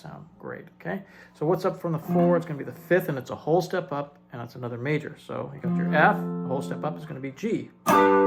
great, okay? So what's up from the 4? It's going to be the 5th, and it's a whole step up, and it's another major. So you got your F, a whole step up is going to be G.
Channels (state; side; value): identical; both; correlation 1.00